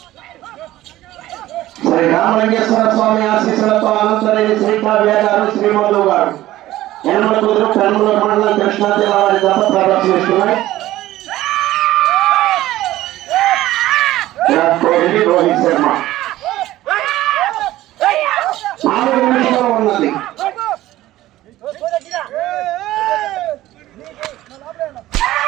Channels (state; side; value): quieter; left; 15.5 dB